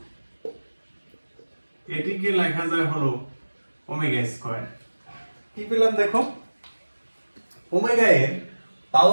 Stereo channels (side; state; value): both; inverted; correlation -1.00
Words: এটিকে লেখা যায় হলো ওমেগা স্কয়ার। কি পেলাম দেখো, ওমেগা এর